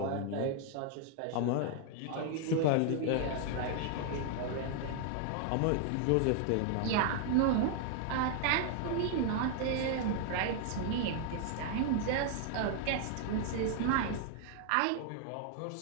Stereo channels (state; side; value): different; both; correlation 0.00